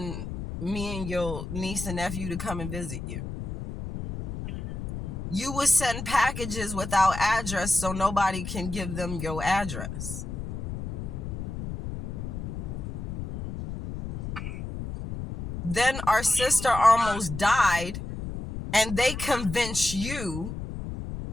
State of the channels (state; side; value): noise; left; rumble, 6 dB below the sound